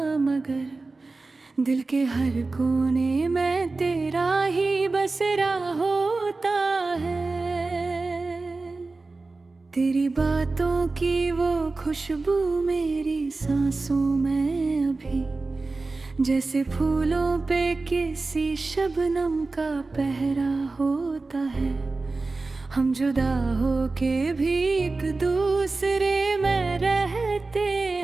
मगर दिल के हर कोने में तेरा ही बसेरा होता है। तेरी बातों की वो खुशबू मेरी सांसों में अभी, जैसे फूलों पे किसी शबनम का पहरा होता है। हम जुदा हो के भी एक दूसरे में रहते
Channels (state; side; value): quieter; left; 3.6 dB